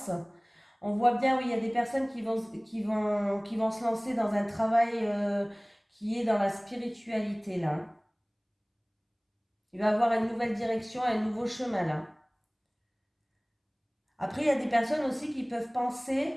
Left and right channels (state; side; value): identical; both; correlation 1.00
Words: On voit bien, oui, il y a des personnes qui vont se lancer dans un travail qui est dans la spiritualité, là. Il va avoir une nouvelle direction, un nouveau chemin, là. Après, il y a des personnes aussi qui peuvent penser,